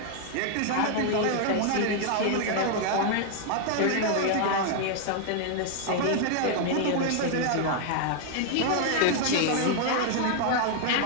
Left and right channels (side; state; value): both; different; correlation 0.00